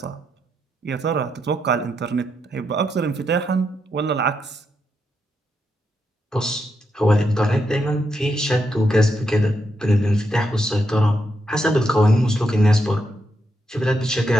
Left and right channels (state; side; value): normal; both; correlation 0.81